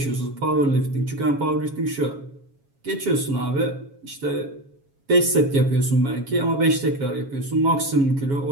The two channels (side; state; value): left; late; 7.3 ms